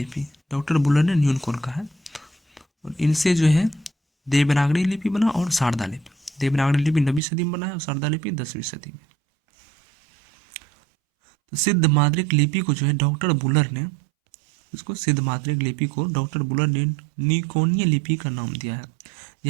डॉक्टर बुलर ने न्यूनकोर कहा है। और इनसे जो है देवनागरी लिपि बना और शारदा लिपि। देवनागरी लिपि 9वीं सदी में बना है और शारदा लिपि 10वीं सदी में। तो सिद्ध मात्रिक लिपि को जो है डॉक्टर बुलर ने निकोनिय लिपि का नाम दिया है।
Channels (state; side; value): drops out; left; at 7.2 s